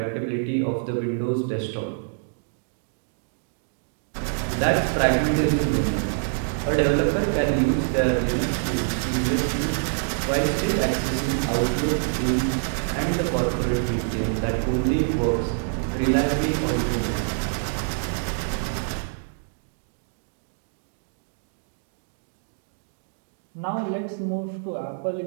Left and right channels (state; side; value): silent; left; digital silence